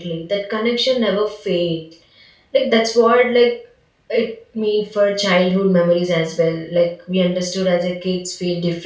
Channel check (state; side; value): identical; both; correlation 1.00